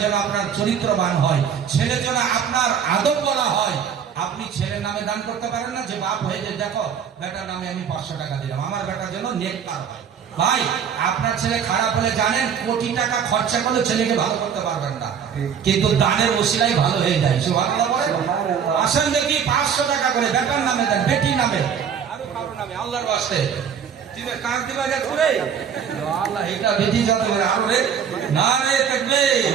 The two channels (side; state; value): left; quieter; 7.6 dB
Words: যেন আপনার চরিত্রবান হয়, ছেলে যেন আপনার আদব বলা হয়। আপনি ছেলের নামে দান করতে পারেন না যে বাপ হয়ে যে দেখো বেটার নামে আমি 500 টাকা দিলাম, আমার বেটার জন্য নেককার হয়। ভাই আপনার ছেলে খারাপ হলে জানেন কোটি টাকা খরচা করলে ছেলেকে ভালো করতে পারবেন না, কিন্তু দানের ওসিলাই ভালো হয়ে যায়। সুবহানাল্লাহ বলেন। আসেন দেখি 500 টাকা করে বেটার নামে দেন, বেটির নামে, আরো কারো নামে, আল্লাহর ওয়াস্তে। তুমি কার দিবা যা করে আল্লাহ এটা বেটি যাবে আরো রে না রে দেখবে